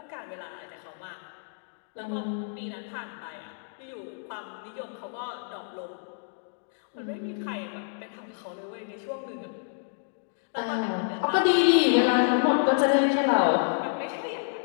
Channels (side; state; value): right; silent; digital silence